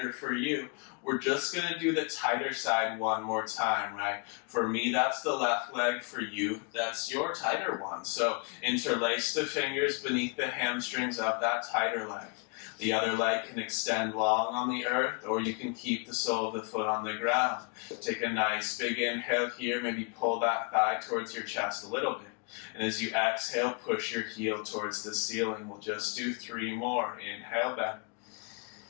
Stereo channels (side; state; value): right; quieter; 35.5 dB